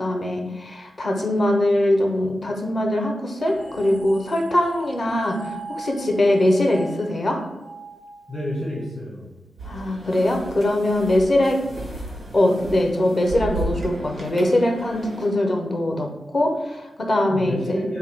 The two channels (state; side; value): normal; both; correlation 0.92